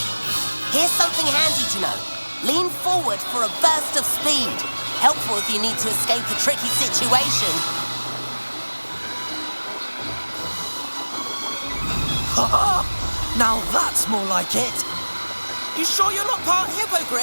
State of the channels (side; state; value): both; inverted; correlation -1.00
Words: Here's something handy to know. Lean forward for a burst of speed. Helpful if you need to escape a tricky situation. Ha! Now that's more like it. You sure you're not part